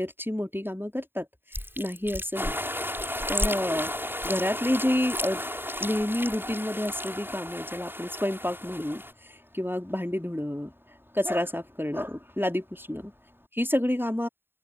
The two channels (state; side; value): late; left; 0.10 ms